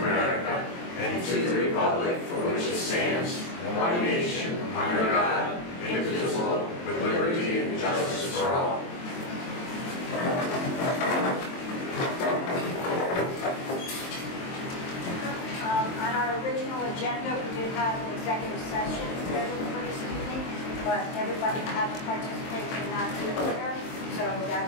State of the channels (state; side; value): late; right; 23 ms